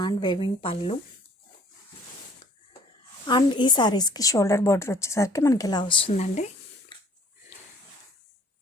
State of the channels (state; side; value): normal; both; correlation 0.56